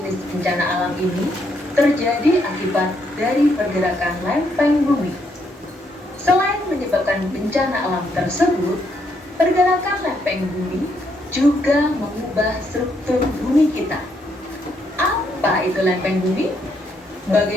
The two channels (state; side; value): normal; both; correlation 0.75